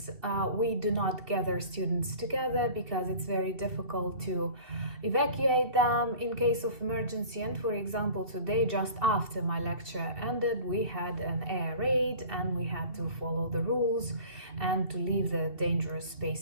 we do not gather students together because it's very difficult to evacuate them in case of emergency. And for example, today, just after my lecture ended, we had an air raid, and we had to follow the rules and to leave the dangerous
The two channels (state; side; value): late; left; 2.7 ms